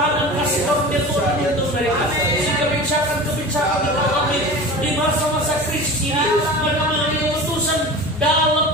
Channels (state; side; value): normal; both; correlation 0.34